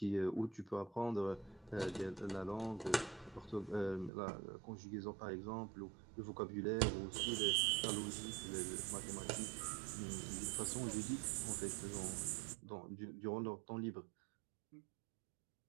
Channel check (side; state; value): left; drops out; at 4.1 s